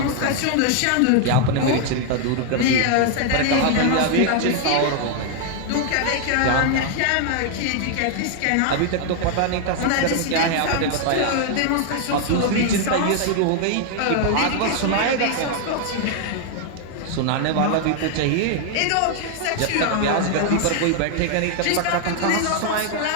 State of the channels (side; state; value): both; different; correlation 0.00